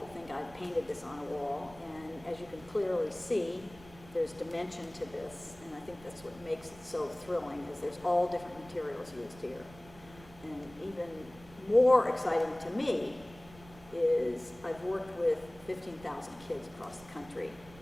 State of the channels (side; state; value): right; noise; rumble, 21 dB below the sound